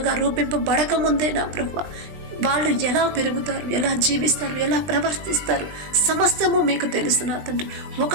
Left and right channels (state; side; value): late; left; 20 ms